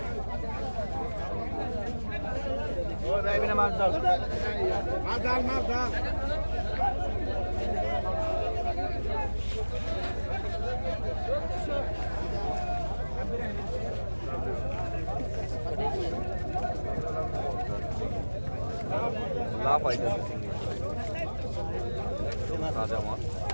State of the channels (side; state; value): both; inverted; correlation -1.00